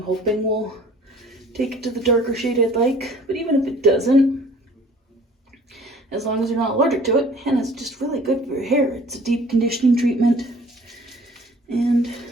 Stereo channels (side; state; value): both; normal; correlation 0.51